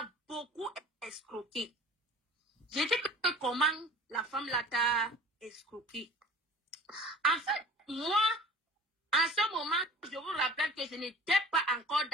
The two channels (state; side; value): normal; both; correlation 0.42